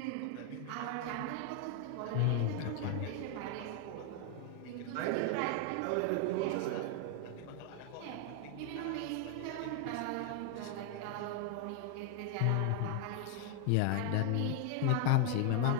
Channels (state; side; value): different; both; correlation 0.00